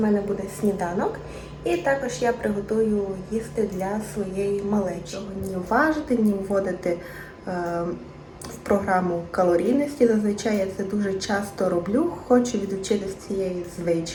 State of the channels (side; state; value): both; identical; correlation 1.00